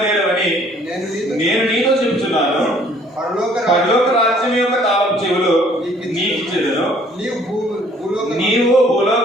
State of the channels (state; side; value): normal; both; correlation 0.59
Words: నేను నీతో చెప్తున్నాను. పరలోక రాజ్యం యొక్క తాళపు చెవులు నీకు ఇచ్చేదను. నీవు